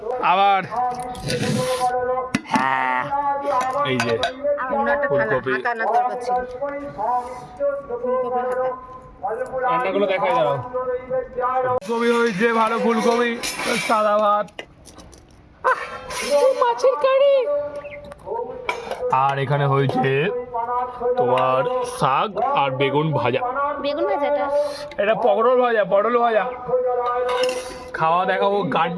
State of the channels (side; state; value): both; identical; correlation 1.00